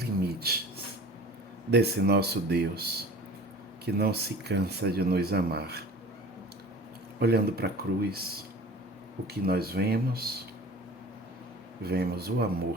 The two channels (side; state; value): both; normal; correlation 0.41